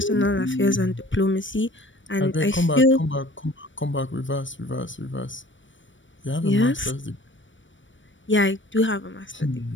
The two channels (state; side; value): late; right; 0.56 ms